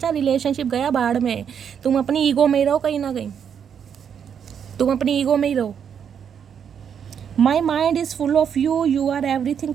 रिलेशनशिप गया बाढ़ में, तुम अपनी ईगो में ही रहो, कहीं ना कहीं तुम अपनी ईगो में ही रहो। My mind is full of you, you are everything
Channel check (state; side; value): quieter; left; 7.9 dB